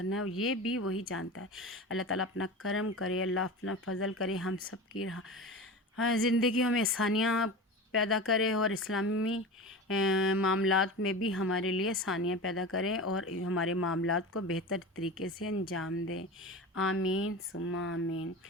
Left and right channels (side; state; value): both; normal; correlation 0.29